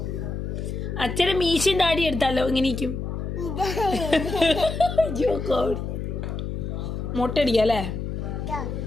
അച്ഛൻ്റെ മീശയും താടി എടുത്താലോ? ഇങ്ങനെയിരിക്കും. മുട്ട അടിക്കല്ലേ?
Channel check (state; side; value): noise; left; hum, 4 dB below the sound